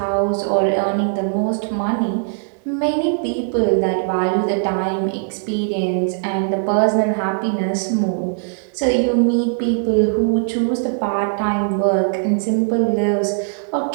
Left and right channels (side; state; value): left; silent; digital silence